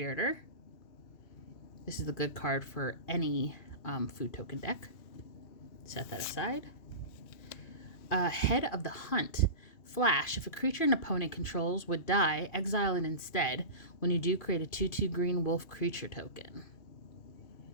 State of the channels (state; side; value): late; right; 2.8 ms